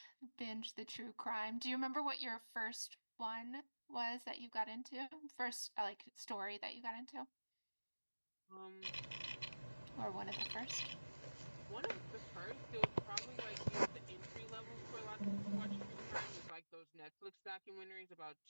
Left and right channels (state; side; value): inverted; both; correlation -1.00